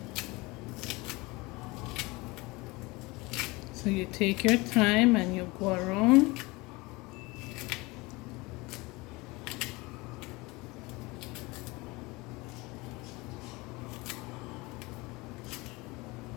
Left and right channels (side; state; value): right; quieter; 23.6 dB